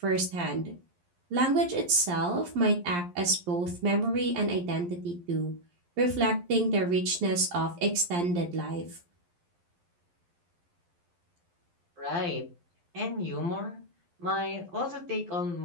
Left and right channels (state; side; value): late; left; 11 ms